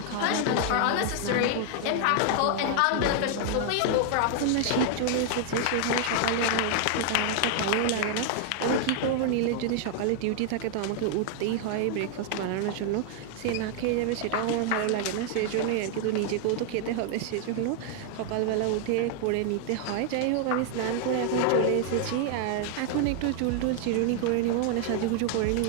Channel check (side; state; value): both; different; correlation 0.00